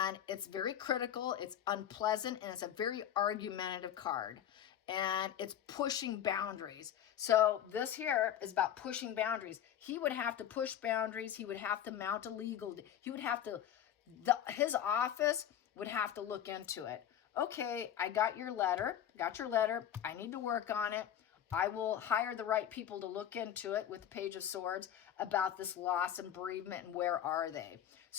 it's very critical, it's unpleasant, and it's a very argumentative card. and it's pushing boundaries. So this here is about pushing boundaries. He would have to push boundaries. He would have to mount a legal, he would have to, his office would have to look into it. Okay, I got your letter, I need to work on it. I will hire the right people to look into it with the Page of Swords about this loss and bereavement and where are they.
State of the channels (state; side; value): quieter; right; 10.2 dB